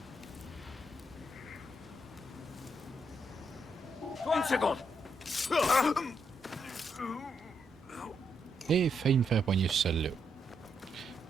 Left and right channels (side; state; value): both; normal; correlation 0.79